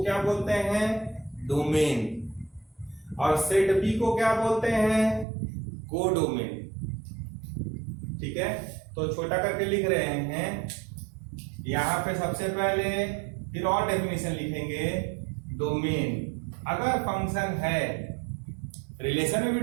क्या बोलते हैं, डोमेन। और सेट बी को क्या बोलते हैं? कोडोमेन। ठीक है, तो छोटा करके लिख रहे हैं यहां पे सबसे पहले, फिर और डेफिनेशन लिखेंगे। डोमेन अगर फंक्शन है, रिलेशन में भी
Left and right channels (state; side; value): drops out; left; at 5.2 s